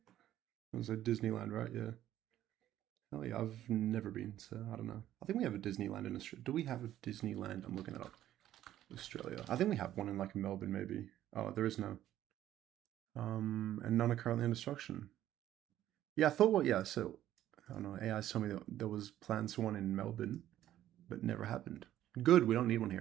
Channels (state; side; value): quieter; left; 12.6 dB